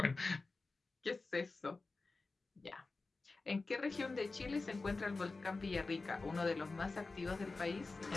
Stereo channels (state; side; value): quieter; right; 3.7 dB